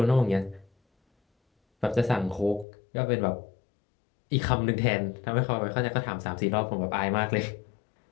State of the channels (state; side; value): drops out; right; at 2.7 s